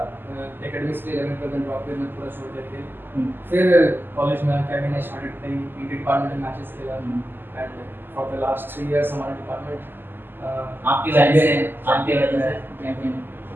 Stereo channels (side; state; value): left; late; 0.096 ms